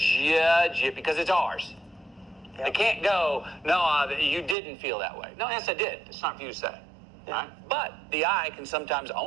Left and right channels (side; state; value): left; drops out; at 4.5 s